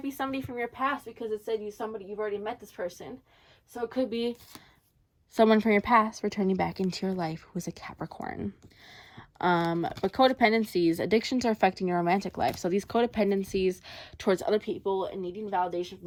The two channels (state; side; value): identical; both; correlation 1.00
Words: be somebody from your past because it said you've already met this person. So it could be someone from your past returning back into your life who is a Capricorn. But codependencies, addictions are affecting your romantic life. So these codependencies towards other people and needing validation